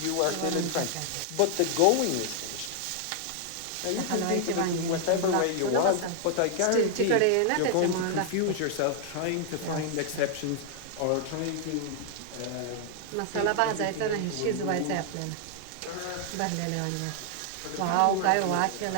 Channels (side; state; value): both; different; correlation 0.00